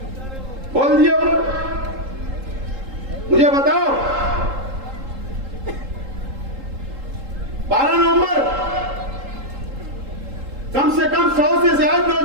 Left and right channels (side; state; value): left; late; 3.8 ms